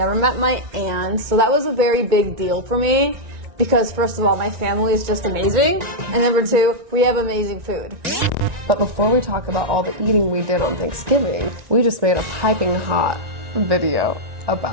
met my aunt. So that was a very big deal for me because, first of all, my family is just amazing. And number two, we have amazing food. But before we talk about all the eating we did on Thanksgiving, we just made a piping hot video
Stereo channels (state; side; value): late; left; 1.9 ms